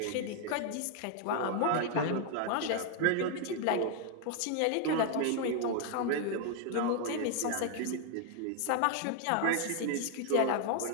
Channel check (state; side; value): different; both; correlation 0.00